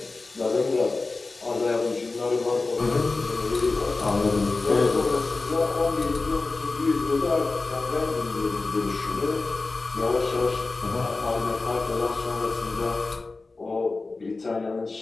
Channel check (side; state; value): right; quieter; 3.6 dB